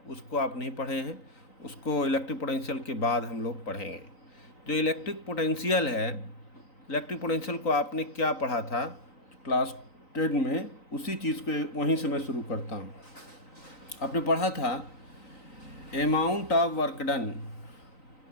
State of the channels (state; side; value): late; right; 3.9 ms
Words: उसको आप नहीं पढ़े हैं, उसको इलेक्ट्रिक पोटेंशियल के बाद हम लोग पढ़ेंगे। जो इलेक्ट्रिक पोटेंशियल है, इलेक्ट्रिक पोटेंशियल को आपने क्या पढ़ा था क्लास 10 में, उसी चीज़ को वहीं से मैं शुरू करता हूँ। आपने पढ़ा था amount of